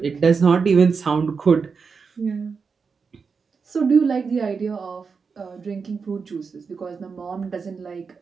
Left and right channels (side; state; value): left; quieter; 5.3 dB